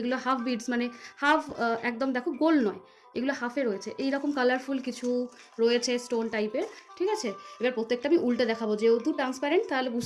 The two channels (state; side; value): identical; both; correlation 1.00